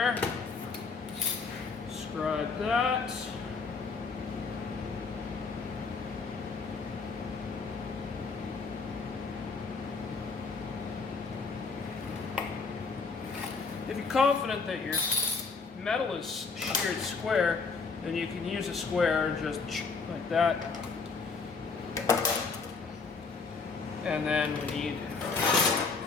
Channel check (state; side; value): quieter; right; 4.7 dB